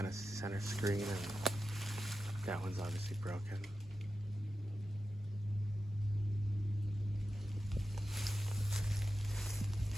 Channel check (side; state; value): both; normal; correlation 0.92